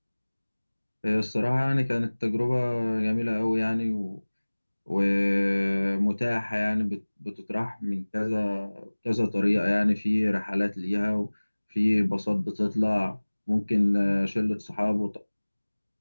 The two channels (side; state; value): both; inverted; correlation -1.00